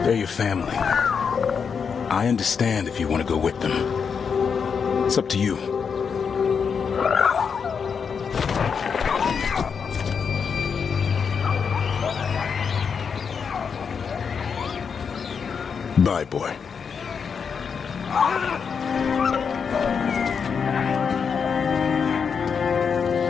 They're your family. I understand if you want to go with them. It's up to you. Bye, boy.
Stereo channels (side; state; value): right; quieter; 6.3 dB